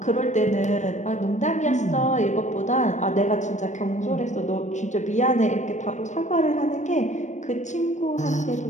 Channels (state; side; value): late; right; 0.35 ms